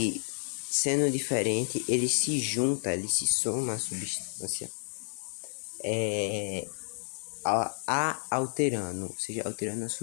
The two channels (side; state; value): right; silent; 57 dB below the other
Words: sendo diferente ele se junta, ele se soma à substância, alterando, ou seja, alterando a